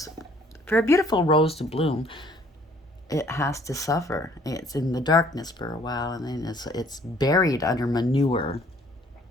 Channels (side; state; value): both; normal; correlation 0.59